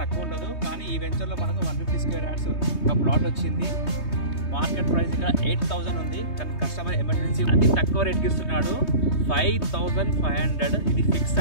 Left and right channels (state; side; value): late; right; 3.2 ms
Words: తక్కువ ఉండదు, కానీ ఈ వెంచర్లో మనకు 150 square yards ఒక ప్లాట్ వచ్చింది. మార్కెట్ ప్రైస్ ఇక్కడ 8,000 ఉంది, కానీ కస్టమర్ ఎమర్జెన్సీ అతి తక్కువ రేట్కి ఇస్తున్నాడు. 5,500 ఇది ఫిక్స్